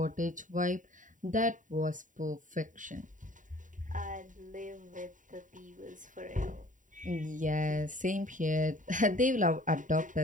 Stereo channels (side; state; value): left; late; 0.38 ms